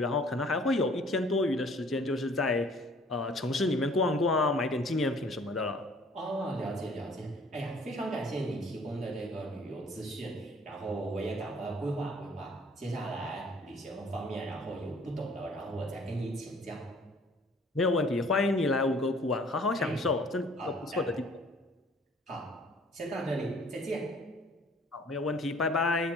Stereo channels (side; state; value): both; normal; correlation 0.55